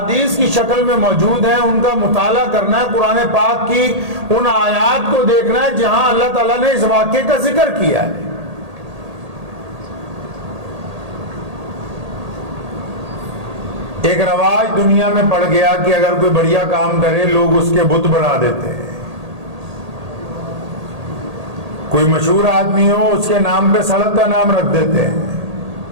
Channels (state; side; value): late; left; 1.8 ms